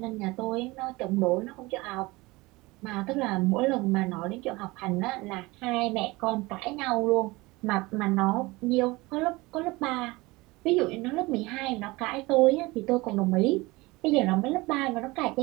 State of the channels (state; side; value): quieter; left; 22.2 dB